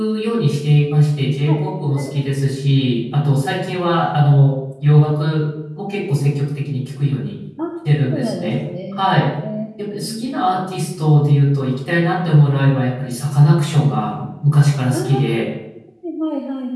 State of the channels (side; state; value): both; identical; correlation 1.00